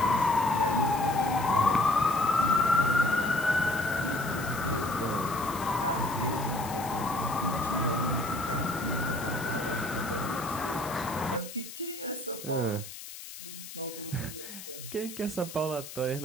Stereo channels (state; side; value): noise; left; hiss, 12 dB below the sound